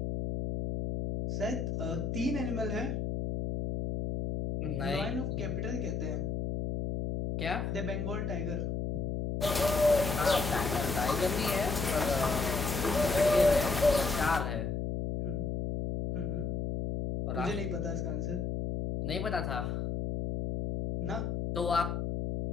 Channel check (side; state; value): left; noise; hum, 1 dB below the sound